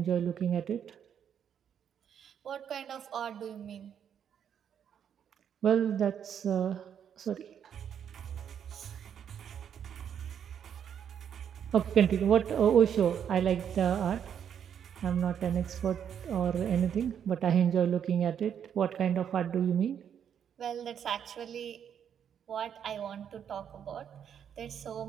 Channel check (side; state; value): left; quieter; 8.5 dB